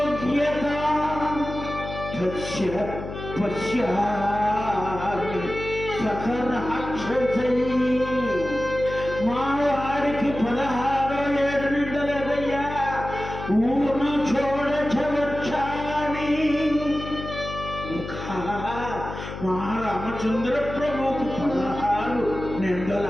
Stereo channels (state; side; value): noise; left; hum, 9 dB below the sound